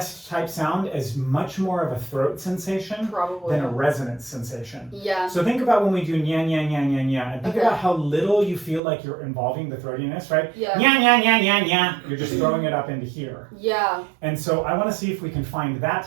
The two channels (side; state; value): left; drops out; at 8.8 s